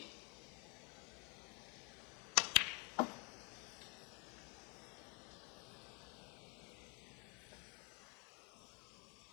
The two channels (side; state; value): right; quieter; 33.9 dB